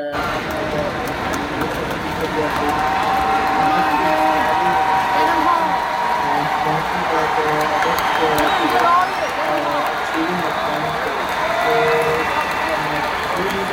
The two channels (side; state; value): both; identical; correlation 1.00